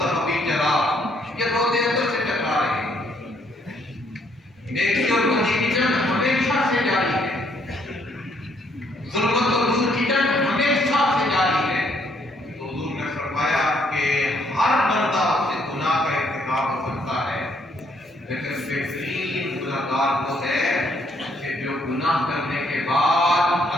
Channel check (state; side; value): normal; both; correlation 0.69